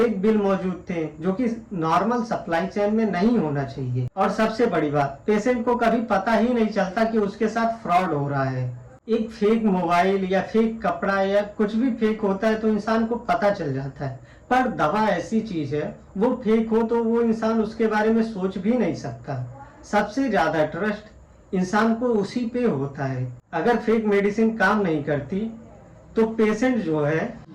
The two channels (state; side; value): identical; both; correlation 1.00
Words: बिल मौजूद थे जो कि नॉर्मल सप्लाई चेन में नहीं होना चाहिए। और सबसे बड़ी बात, पेशेंट को कभी पता ही नहीं चलता कि उसके साथ फ्रॉड हो रहा है। एक फेक मोबाइल या फेक कपड़ा या कुछ भी फेक होता है तो इंसान को पता चल जाता है, पर दवा ऐसी चीज है वो फेक हो तो वो इंसान उसके बारे में सोच भी नहीं सकता। सबसे ज्यादा ट्रस्ट इंसान को उसी पे होता है। अगर फेक मेडिसिन काम नहीं करती तो पेशेंट जो है